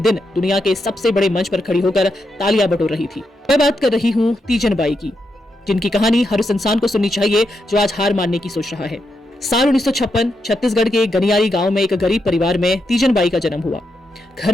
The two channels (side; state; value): both; normal; correlation 0.84